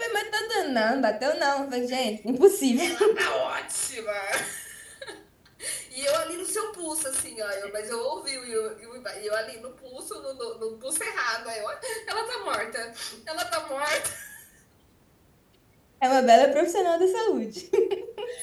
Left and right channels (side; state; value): both; identical; correlation 1.00